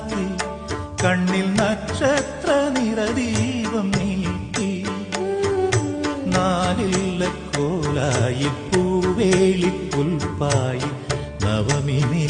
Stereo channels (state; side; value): identical; both; correlation 1.00